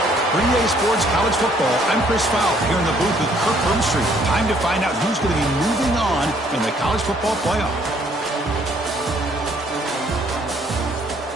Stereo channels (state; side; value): normal; both; correlation 0.64